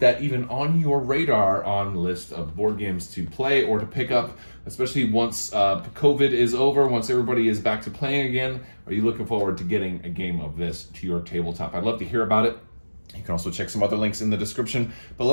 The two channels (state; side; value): inverted; both; correlation -1.00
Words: even on your radar on list of board games to play or to pick up, especially once COVID is over, once everybody is back to playing again? Are you looking forward to getting a game of this to your tabletop? I'd love to hear about it. You can also check some other links in the description